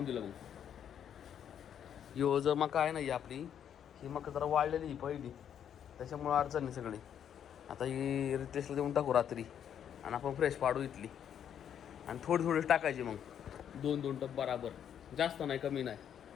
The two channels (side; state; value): right; quieter; 9.1 dB